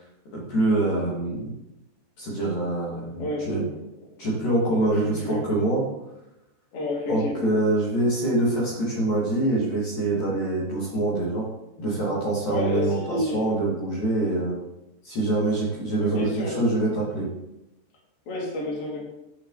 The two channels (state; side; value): late; right; 13 ms